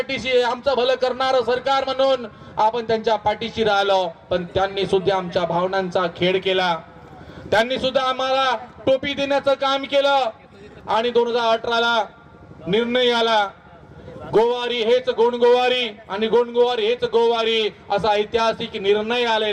आहे. आमचं भलं करणारं सरकार म्हणून आपण त्यांच्या पाठीशी राहिलो, पण त्यांनी सुद्धा आमच्या भावनांचा खेळ केला. त्यांनी सुद्धा आम्हाला टोपी देण्याचं काम केलं आणि 2018ला निर्णय आला, गोवारी हेच गोंडगोवारी आणि गोंडगोवारी हेच गोवारी, असा ऐतिहासिक निर्णय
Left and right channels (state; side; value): identical; both; correlation 1.00